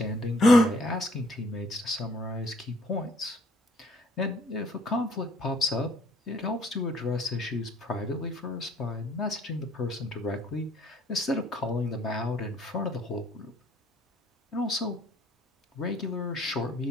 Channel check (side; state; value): both; normal; correlation 0.61